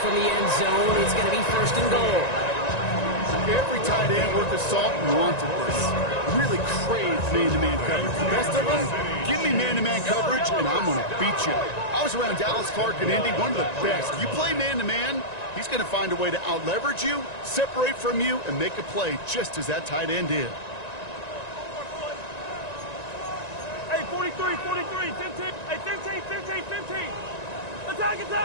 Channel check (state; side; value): late; right; 1.9 ms